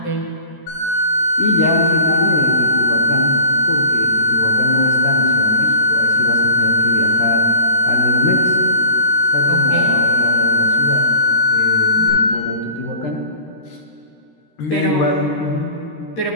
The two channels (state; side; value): late; right; 13 ms